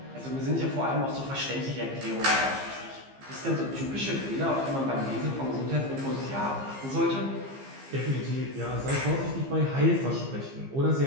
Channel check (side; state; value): left; late; 15 ms